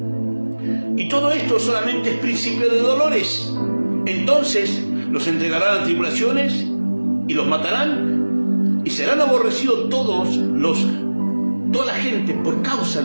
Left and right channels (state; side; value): inverted; both; correlation -1.00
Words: Y todo esto solamente es principio de dolores. Entonces los entregarán a tribulaciones y los matarán, y serán aborrecidos toda la gente por causa